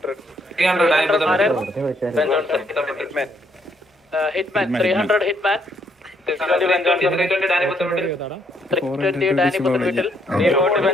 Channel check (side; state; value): both; normal; correlation 0.71